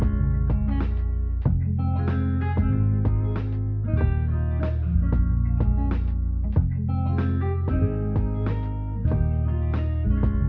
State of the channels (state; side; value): identical; both; correlation 1.00